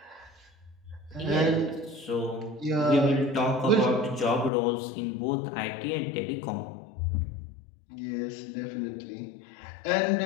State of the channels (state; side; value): drops out; right; at 4.5 s